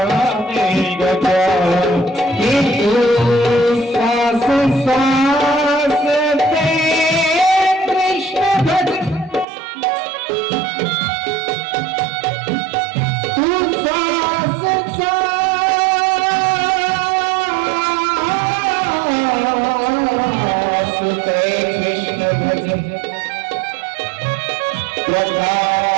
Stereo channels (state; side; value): drops out; left; at 9.5 s